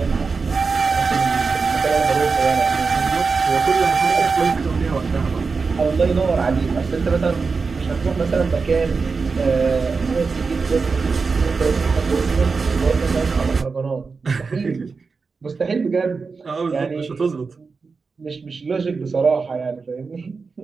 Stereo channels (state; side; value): quieter; left; 4.7 dB